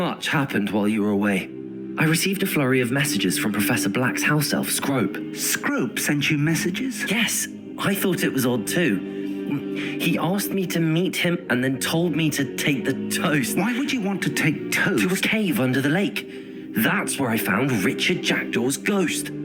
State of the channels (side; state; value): both; identical; correlation 1.00